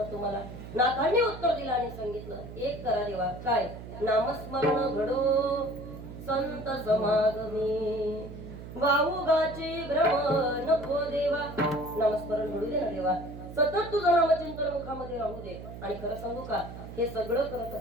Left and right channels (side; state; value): right; noise; hum, 12 dB below the sound